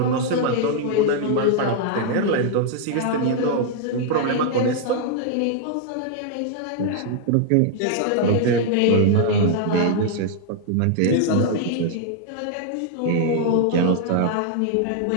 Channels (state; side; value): different; both; correlation 0.00